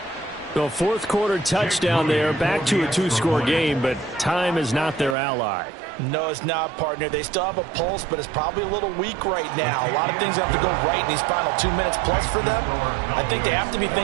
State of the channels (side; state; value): left; drops out; at 5.2 s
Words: The 4th quarter touchdown there, back to a 2-score game, but time is not their ally. No, it's not, partner. They still have a pulse, but it's probably a little weak right now. A lot of things have to go right in these final 2 minutes plus for them. I think they have to be